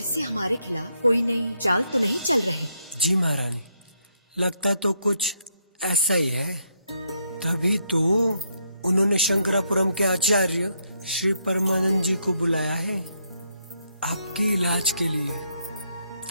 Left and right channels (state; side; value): inverted; both; correlation -0.76